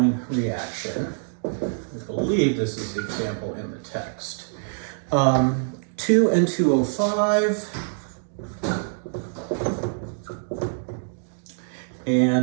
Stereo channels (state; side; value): silent; left; digital silence